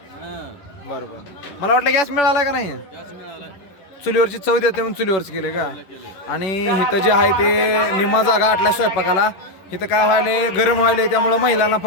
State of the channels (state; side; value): late; right; 11 ms